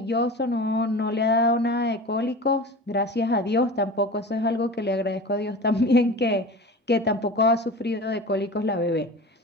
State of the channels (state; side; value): normal; both; correlation 0.34